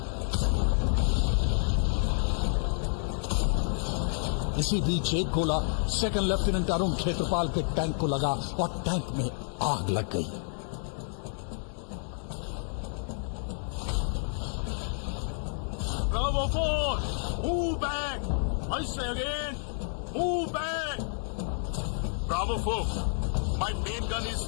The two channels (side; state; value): right; silent; digital silence